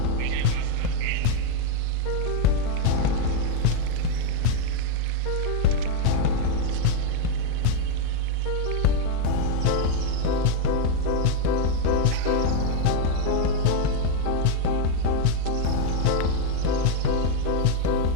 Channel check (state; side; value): different; both; correlation 0.01